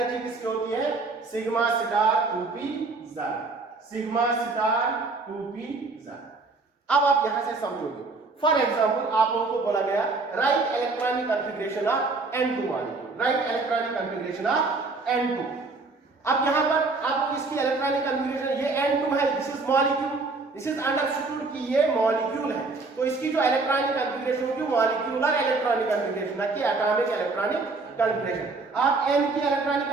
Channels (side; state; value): left; quieter; 3.8 dB